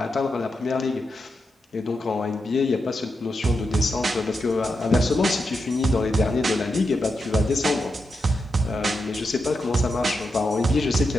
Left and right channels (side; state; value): both; normal; correlation 0.86